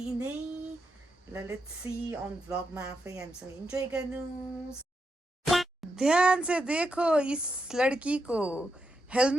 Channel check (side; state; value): both; normal; correlation 0.84